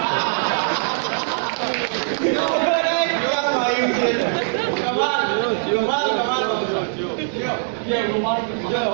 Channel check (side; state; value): left; silent; 63 dB below the other